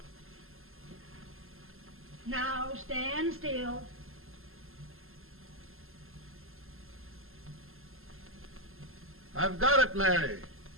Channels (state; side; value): late; left; 0.61 ms